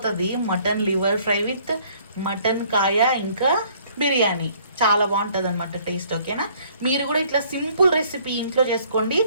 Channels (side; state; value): both; inverted; correlation -0.59